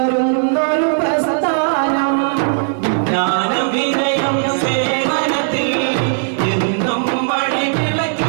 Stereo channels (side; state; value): left; silent; 68 dB below the other